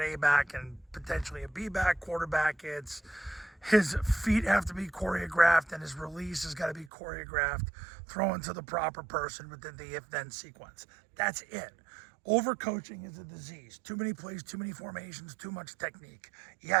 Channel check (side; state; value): left; drops out; at 6.9 s